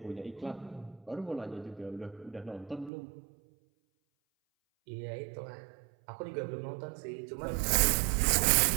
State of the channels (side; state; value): left; drops out; at 2.9 s